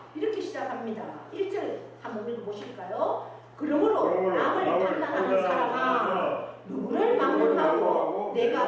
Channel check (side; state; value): both; identical; correlation 1.00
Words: 이렇게 시작합니다. 1절 한번 읽어보실까요? 그러므로 남을 판단하는 사람아 누구를 막론하고